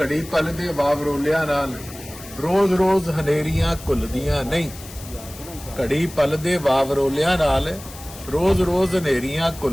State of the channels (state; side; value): noise; left; hiss, 16 dB below the sound